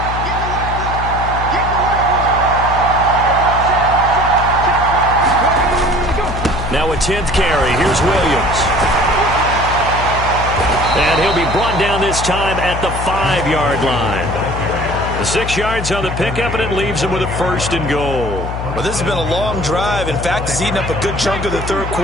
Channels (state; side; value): noise; left; hum, 5 dB below the sound